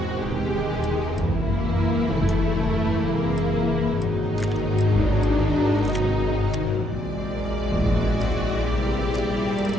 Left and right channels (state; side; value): normal; both; correlation 0.74